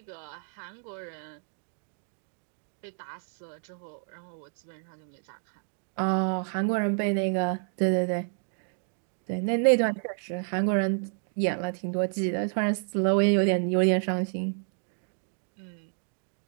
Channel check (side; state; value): left; silent; 58 dB below the other